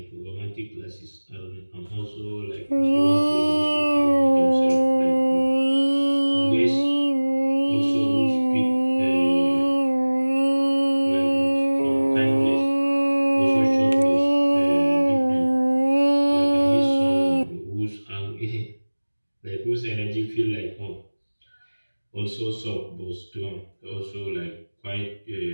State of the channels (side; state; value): both; inverted; correlation -1.00